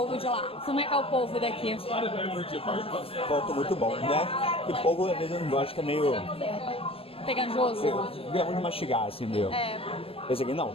de lá. Como é que é o polvo daqui? Ponto muito bom, né? E polvo, às vezes, eu não gosto, que é meio... Pegajoso. Grão de mastigar, assim, meio. É. Esse aqui não,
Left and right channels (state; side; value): late; right; 0.28 ms